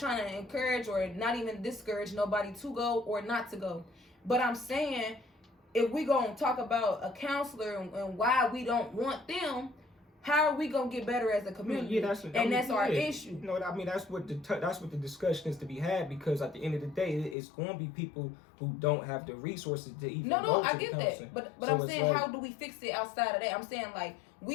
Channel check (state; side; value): drops out; right; at 17.4 s